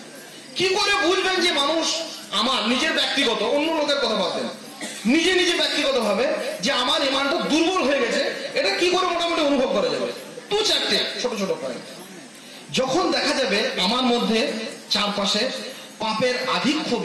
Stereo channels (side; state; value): both; identical; correlation 1.00